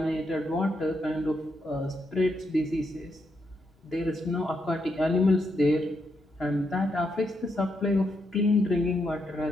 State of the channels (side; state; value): both; normal; correlation 0.80